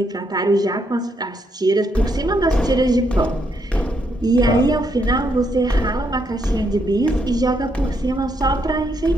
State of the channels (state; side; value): normal; both; correlation 0.76